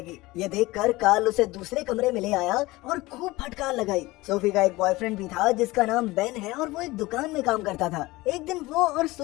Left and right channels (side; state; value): right; quieter; 20.3 dB